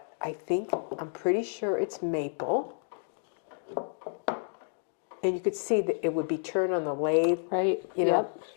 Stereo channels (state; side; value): silent; right; digital silence